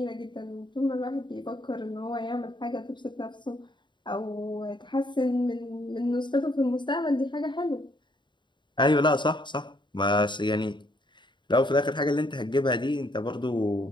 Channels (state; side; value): late; right; 0.23 ms